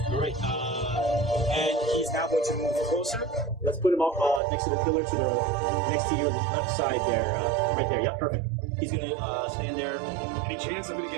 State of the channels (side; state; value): left; drops out; at 4.4 s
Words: right. And he's now going to move closer. Let's put him up next to the pillar next to your left side there. Right there. Yep, perfect. He's going to stand there. Any chance of